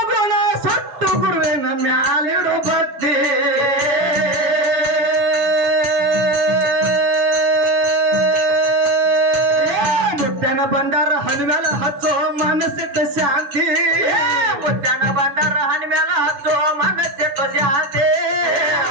ಗುಣ ಸುಟ್ಟು ಗುರುವಿನ ಮ್ಯಾಲಿಡು ಬತ್ತೆ ಮುತ್ತನ ಭಂಡಾರ ಹಣ್ಣು ಮ್ಯಾಲ ಹಚ್ಚೋ ಮನಸ್ಸಿಟ್ಟ ಶಾಂತಿ ಮುತ್ಯನ ಭಂಡಾರ ಹಣ್ಣಿ ಮೇಲ ಹಚ್ಚೋ ಮನಸ್ಸಿಟ್ಟು ಶಾಂತಿ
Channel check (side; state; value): left; late; 7.0 ms